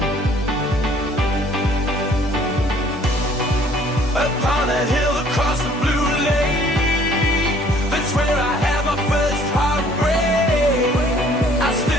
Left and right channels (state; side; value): normal; both; correlation 0.58